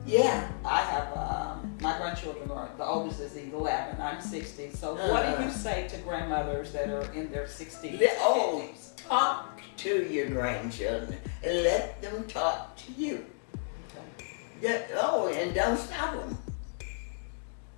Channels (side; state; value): right; silent; digital silence